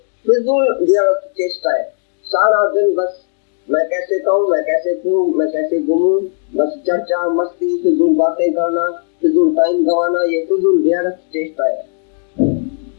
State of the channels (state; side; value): silent; right; digital silence